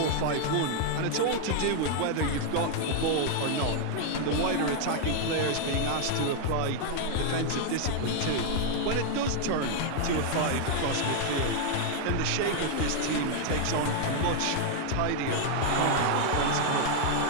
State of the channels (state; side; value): different; both; correlation 0.00